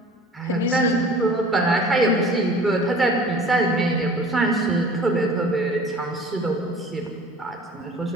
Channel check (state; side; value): normal; both; correlation 0.45